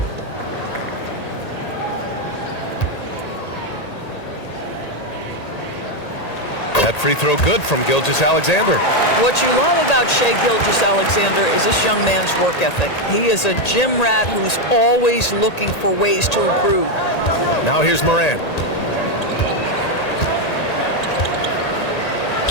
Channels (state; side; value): late; right; 1.8 ms